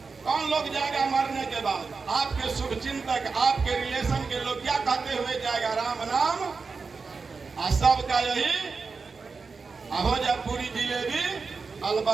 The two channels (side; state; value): left; quieter; 4.6 dB